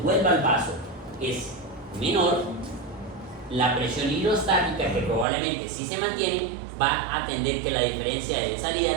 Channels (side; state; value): left; drops out; at 5.2 s